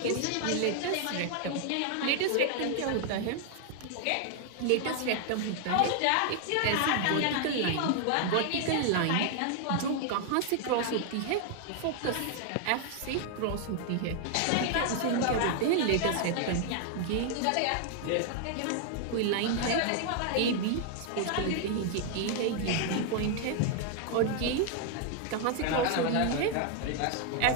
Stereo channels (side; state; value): both; different; correlation 0.00